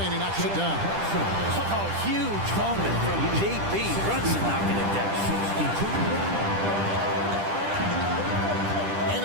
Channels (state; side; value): late; left; 10 ms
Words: and he knocks it down. Oh, huge moment from JB. Brunson knocking it down.